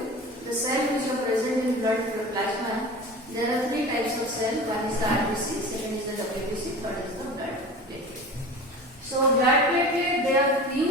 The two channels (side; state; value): both; normal; correlation 0.35